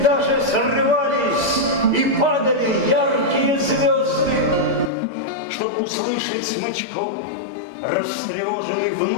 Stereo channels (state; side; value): drops out; right; at 4.9 s